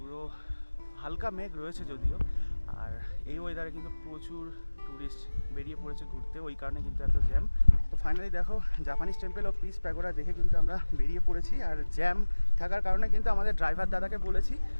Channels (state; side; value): inverted; both; correlation -1.00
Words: হালকা মেঘ রয়েছে যদিও, আর এই ওয়েদারে কিন্তু প্রচুর টুরিস্ট বেরিয়ে পড়েছে ঘুরতে, ওই কারণে কিন্তু এত জ্যাম। তো ফাইনালি দেখো জাপানিজ টেম্পল ও পিস প্যাগোডা দেখে কিন্তু আমরা বেরিয়ে পড়েছি। আর জ্যাম থাকার কারণে কিন্তু আমাদের ড্রাইভার দাদাকে বলেছি